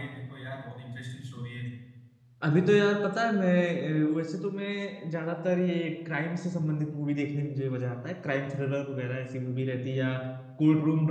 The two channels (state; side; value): identical; both; correlation 1.00